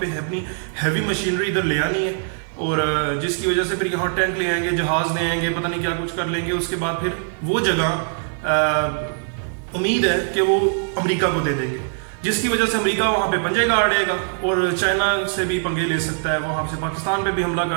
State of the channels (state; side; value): silent; left; 57 dB below the other